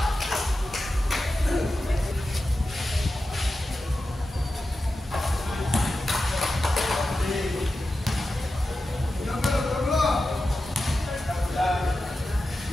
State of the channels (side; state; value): both; normal; correlation 0.92